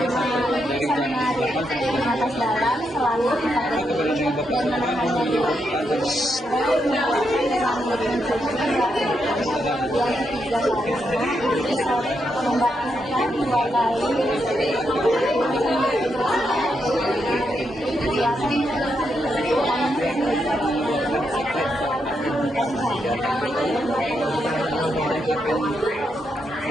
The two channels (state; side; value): normal; both; correlation 0.82